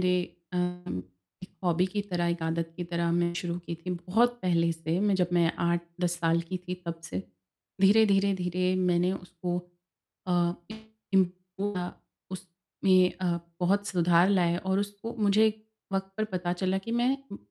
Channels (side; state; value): both; identical; correlation 1.00